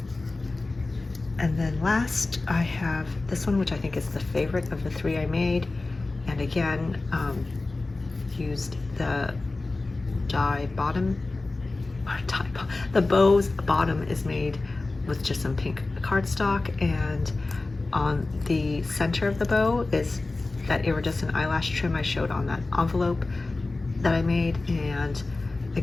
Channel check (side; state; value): right; quieter; 3.3 dB